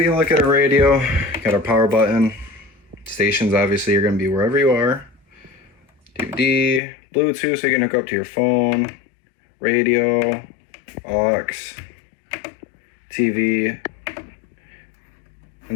a look at our radio, got our power button. Stations obviously are going to be wherever you are. DVD, Bluetooth so you can hook up to your phone, radio, aux, TV, and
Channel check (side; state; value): right; drops out; at 6.8 s